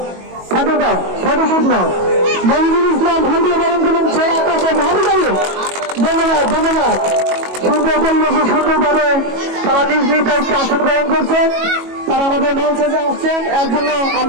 ফটোশুট নাও। মজিদুল ইসলাম ফুল দিয়ে বরণ করে নিচ্ছেন আকাশের ভাবি গাড়ি। ধন্যবাদ ধন্যবাদ। সুন্দর পরিবেশে সুন্দরভাবে তারা নিজ নিজ দায়িত্বে আসন গ্রহণ করছেন। তারা আমাদের মঞ্চে যে আসছেন এর জন্য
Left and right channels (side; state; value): left; late; 22 ms